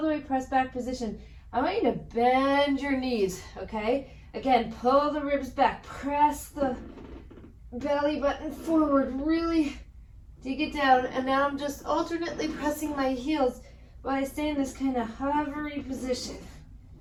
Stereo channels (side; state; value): both; identical; correlation 1.00